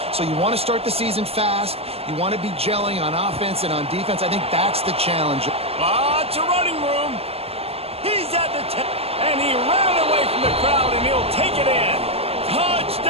So you want to start the season fast. You want to be gelling on offense and on defense. I think that's the challenge. Lots of running room. He's at the 10, and he ran away from the crowd, and he'll take it in.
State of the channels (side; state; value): left; late; 0.29 ms